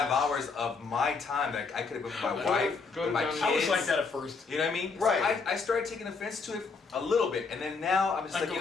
hours of my time that I could have been with my wife, go with my down- kids. I was like that at first. You know what I mean? Right. So I started taking offense to it a little bit, and then now I'm just I like, go you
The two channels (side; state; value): right; quieter; 4.7 dB